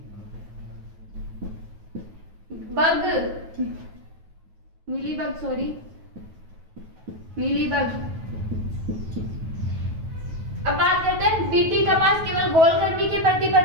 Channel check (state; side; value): late; left; 9.3 ms